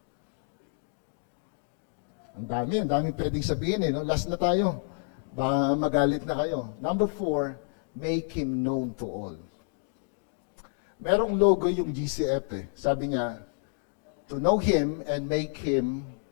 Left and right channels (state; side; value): silent; right; digital silence